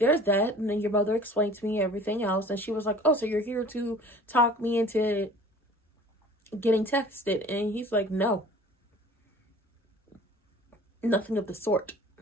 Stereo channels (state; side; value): normal; both; correlation 0.46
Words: that. And then your mother explained to me everything else. And she was like, oh, so you're here to talk me into getting texted? And he's like, no, nothing of the sort.